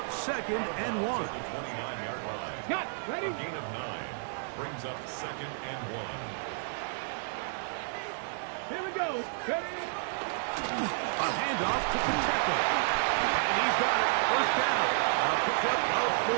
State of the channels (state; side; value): silent; left; digital silence